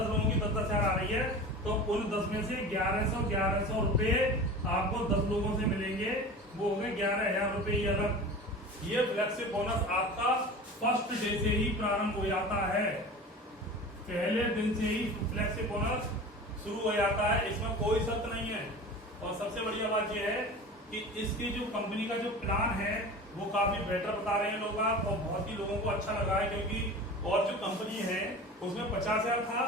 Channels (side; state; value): both; normal; correlation 0.35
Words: लोगों की 10-10 हजार आ रही है तो उन 10 में से 1100 रुपए आपको 10 लोगों से मिलेंगे, वो हो गए 11,000 रुपए अलग। ये फ्लेक्सिबल बोनस आपका फर्स्ट डे से ही प्रारंभ हो जाता है, पहले दिन से ही फ्लेक्सिबल बोनस शुरू हो जाता है, इसमें कोई शर्त नहीं है। और सबसे बढ़िया बात यह है कि इसकी जो कंपनी का जो प्लान है वो काफी बेटर बता रहे हैं लोग और बहुत ही लोगों को अच्छा लगा है, क्योंकि और जो कंपनी है उसमें 50,000 था,